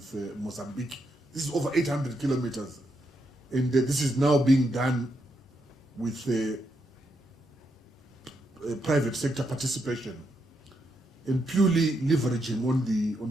Mozambique. This is over 800 kilometers. And this is now being done with private sector participation and purely leveraging on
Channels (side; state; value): both; normal; correlation 0.81